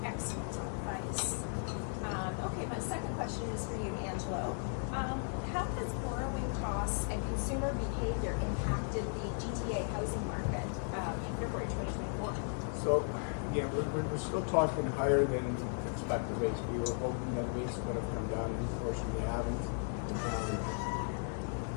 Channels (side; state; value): right; silent; 54 dB below the other